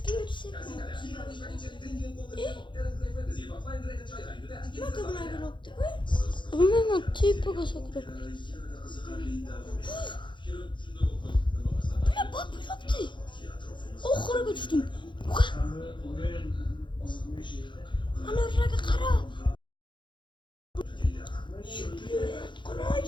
etsek. Ne kadar bir nokta. Bilmem tipiga sakrat. Ne bak bir nokta. Oxiriga tushdim. Ana raga qara.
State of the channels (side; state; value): right; late; 0.23 ms